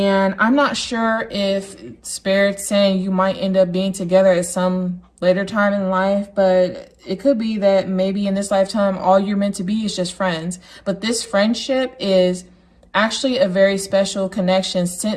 I'm not sure if Spirit's saying you might end up being together at some later time in life, but it could be that maybe in this lifetime, all you're meant to be is just friends. But this friendship is actually a very special connection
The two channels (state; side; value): identical; both; correlation 1.00